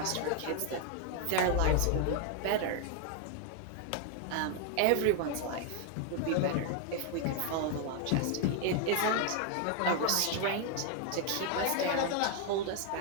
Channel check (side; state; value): both; different; correlation 0.01